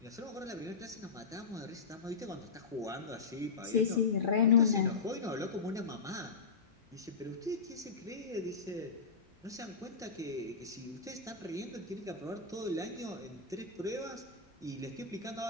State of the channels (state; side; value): quieter; right; 5.0 dB